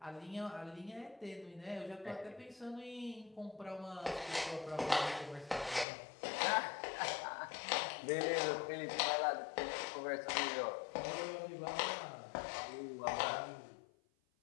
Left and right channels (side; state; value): right; drops out; at 5.9 s